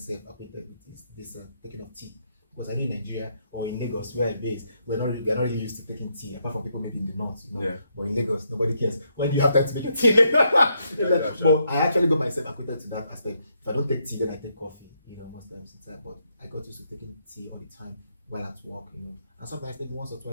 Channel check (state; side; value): inverted; both; correlation -0.76